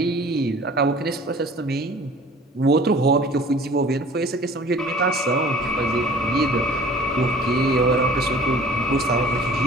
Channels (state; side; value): normal; both; correlation 0.48